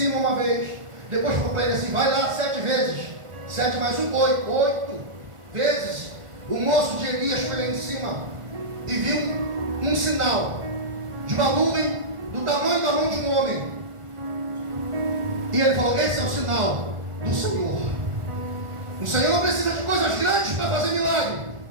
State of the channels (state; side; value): late; left; 1.4 ms